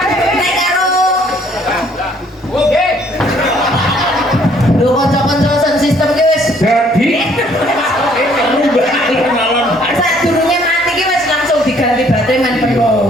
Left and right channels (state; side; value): normal; both; correlation 0.62